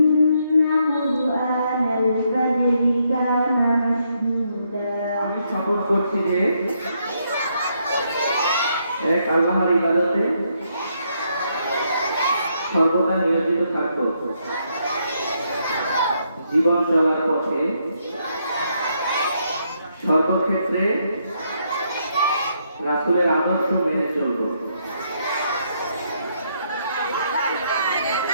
قرآن الفجر كان مشهودا আমি শপথ করছি যে এক আল্লাহর ইবাদতে সর্বদা নিয়োজিত থাকব, জীবন চলার পথে সর্বক্ষেত্রে রাসূলের আদর্শ মেনে চলব।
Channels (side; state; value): both; inverted; correlation -0.75